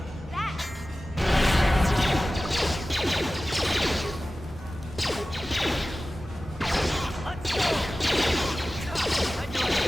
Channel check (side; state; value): both; normal; correlation 0.96